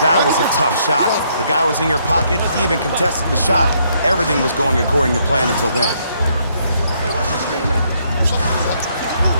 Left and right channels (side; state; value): both; inverted; correlation -0.71